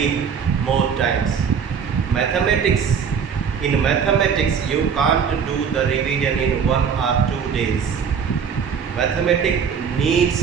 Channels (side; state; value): left; quieter; 6.8 dB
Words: more times. In mathematics, you can't do the revision in 1 or 2 days. Mathematics